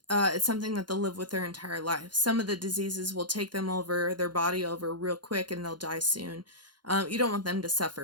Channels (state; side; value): late; left; 0.71 ms